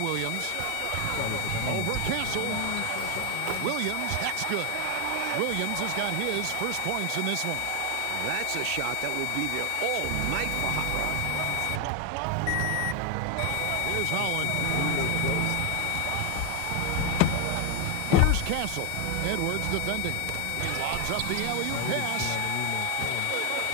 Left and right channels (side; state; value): both; different; correlation 0.01